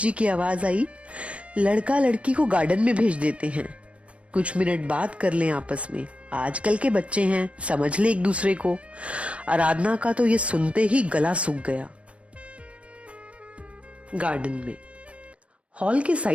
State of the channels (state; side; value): late; left; 0.062 ms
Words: की आवाज आई, लड़का लड़की को गार्डन में भेज देते हैं, कुछ मिनट बात कर लें आपस में, आजकल के बच्चे हैं, समझ ले एक दूसरे को। आराधना का तो ये सुनते ही गला सूख गया। गार्डन में, हॉल के